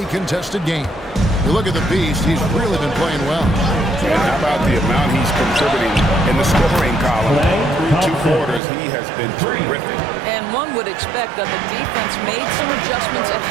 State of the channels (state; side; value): drops out; left; at 8.6 s